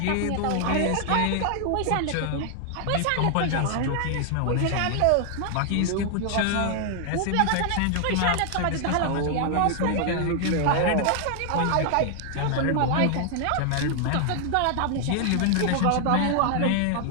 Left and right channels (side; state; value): both; different; correlation 0.00